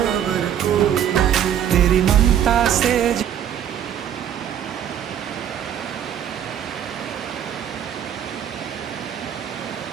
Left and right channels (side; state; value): left; quieter; 9.8 dB